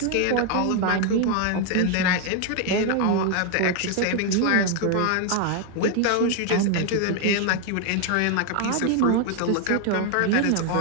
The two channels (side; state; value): both; different; correlation 0.01